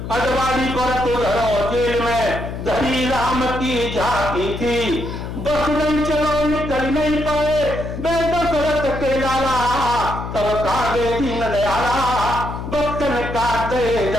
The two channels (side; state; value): left; noise; hum, 7 dB below the sound